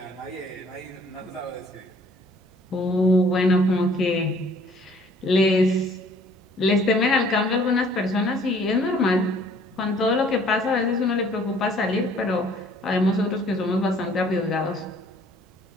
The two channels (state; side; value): normal; both; correlation 0.57